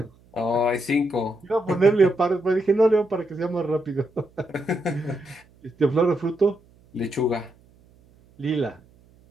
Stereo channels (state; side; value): noise; right; hum, 30 dB below the sound